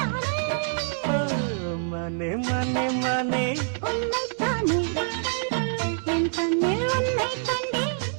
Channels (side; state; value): left; silent; 61 dB below the other